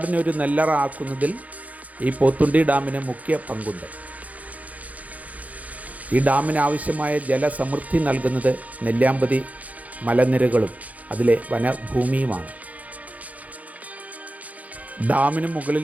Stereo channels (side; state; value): left; late; 0.072 ms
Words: ഒരു നെല്ലറ ആക്കുന്നതിൽ ഈ പോത്തുണ്ടി ഡാമിന് മുഖ്യ പങ്കുണ്ട്. ഈ ഡാമിന് ആവശ്യമായ ജലസമൃദ്ധി നൽകുന്നത് നെല്ലിയാമ്പതി മലനിരകളും അതിലെ വനഭൂമിയുമാണ്. ഡാമിന്